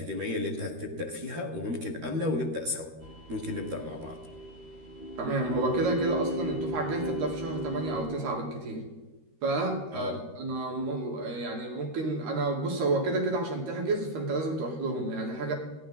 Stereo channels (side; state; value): left; late; 13 ms